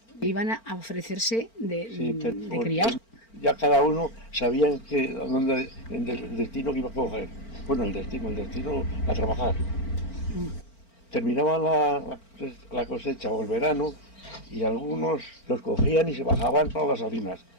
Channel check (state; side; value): late; right; 4.4 ms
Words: Iban a ofrecerse de porque criados. ya cada uno sabía el destino que iba a coger. Bueno, el destino a trabajar. Terminaba la cosecha o el verano y algunos los cogían y se bajaban para las salinas.